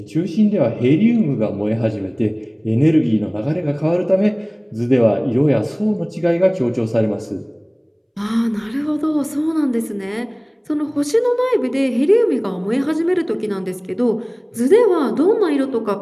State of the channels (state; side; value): identical; both; correlation 1.00